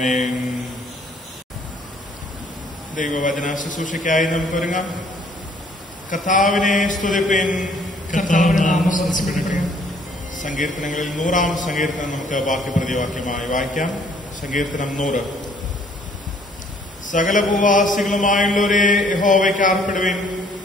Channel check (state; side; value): normal; both; correlation 0.61